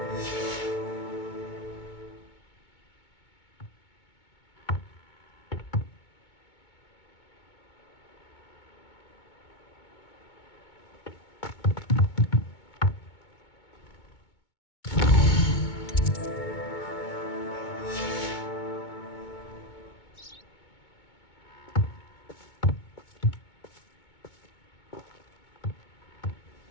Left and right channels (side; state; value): right; late; 2.2 ms